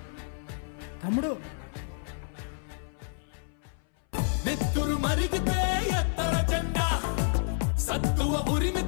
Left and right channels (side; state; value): right; silent; 58 dB below the other